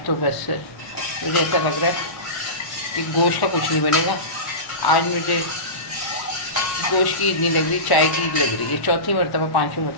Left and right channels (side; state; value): right; late; 1.1 ms